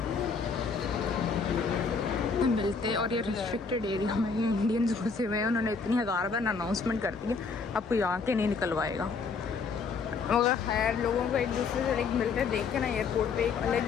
मिलते। और ये रिस्ट्रिक्टेड एरिया में ये इंडियंस घुसे हुए हैं। उन्होंने इतनी 1000 बार अनाउंसमेंट कर दी है, अब कोई आके नहीं निकलवाएगा। मगर खैर, लोगों को एक दूसरे से लाइक मिलते देख के ना एयरपोर्ट पे एक अलग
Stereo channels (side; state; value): right; quieter; 5.1 dB